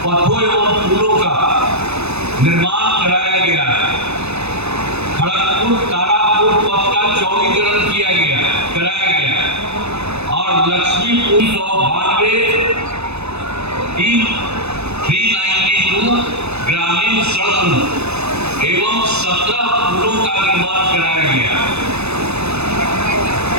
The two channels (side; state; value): left; late; 0.80 ms